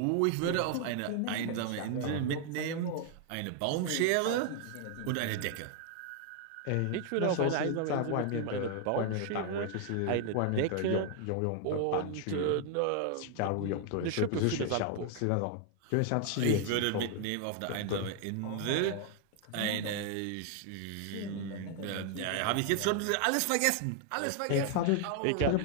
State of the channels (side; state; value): both; different; correlation 0.00